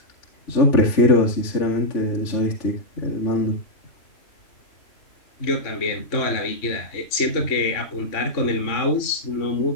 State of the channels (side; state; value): right; late; 3.6 ms